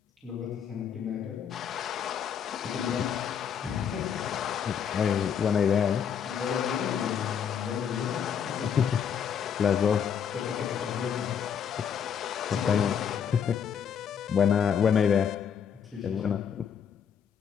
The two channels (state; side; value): quieter; right; 7.8 dB